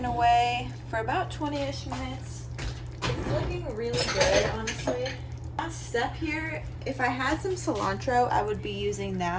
away for about 20-ish minutes. It's looking really good, honestly. Last step here, if I had some cilantro, I would be using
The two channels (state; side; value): identical; both; correlation 1.00